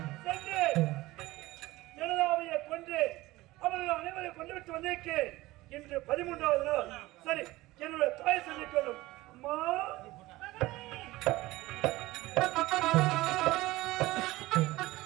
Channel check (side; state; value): left; quieter; 18.8 dB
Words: ஜனதாவையை கொன்று அவர்கள் அனைவரை கொண்டு விட்டு வந்திருக்கு இன்று 13வது நாள். சரி, என்னுடைய தாய் சொல்லிக் கொள்ளும் அம்மா